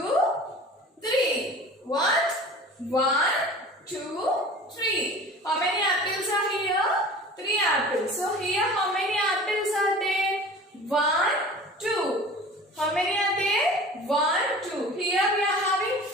3. What? 1, 2, 3. How many apples are here? 3 apples. So here how many apples are there? 1, 2. How many are there? 1, 2. Here we are having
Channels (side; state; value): both; normal; correlation 0.40